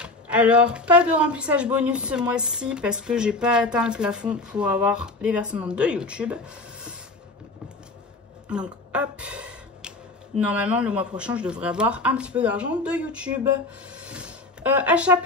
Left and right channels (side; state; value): right; quieter; 3.0 dB